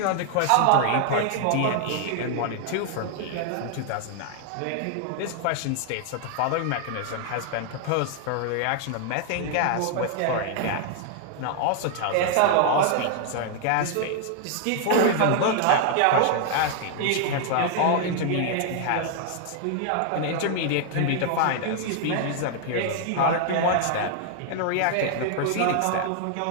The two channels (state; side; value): different; both; correlation 0.00